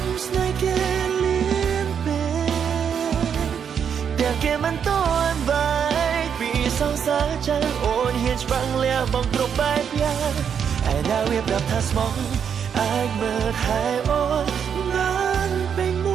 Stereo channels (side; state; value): left; quieter; 7.6 dB